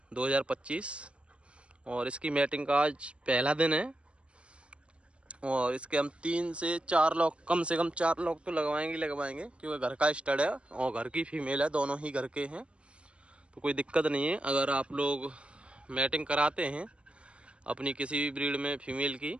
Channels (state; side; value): late; left; 0.058 ms